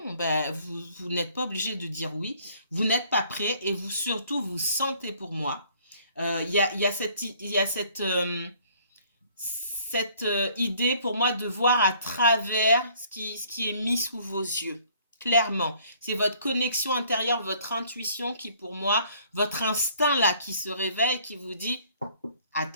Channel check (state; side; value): inverted; both; correlation -0.59